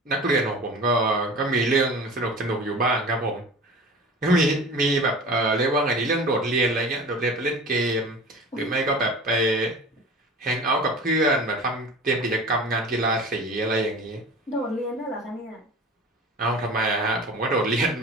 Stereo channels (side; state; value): both; normal; correlation 0.37